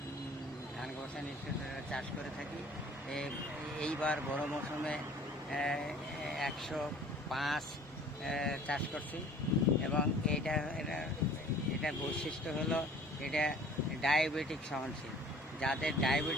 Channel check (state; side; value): normal; both; correlation 0.49